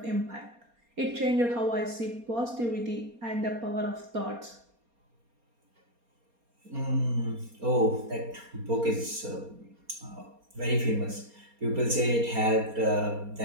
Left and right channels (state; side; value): late; left; 4.3 ms